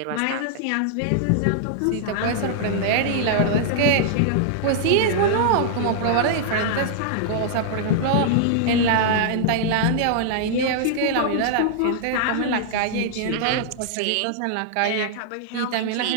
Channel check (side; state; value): both; different; correlation -0.01